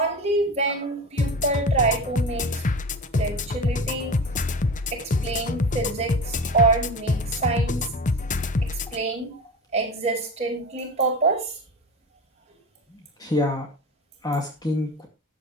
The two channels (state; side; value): normal; both; correlation 0.30